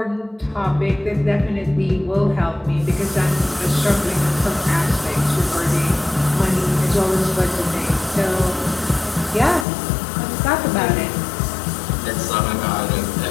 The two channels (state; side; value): drops out; right; at 9.7 s